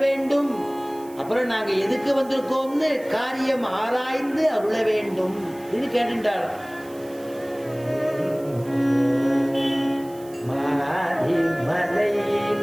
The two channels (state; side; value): noise; right; hiss, 23 dB below the sound